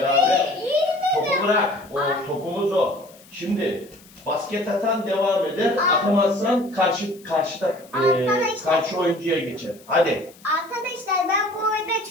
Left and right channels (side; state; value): left; noise; hiss, 25 dB below the sound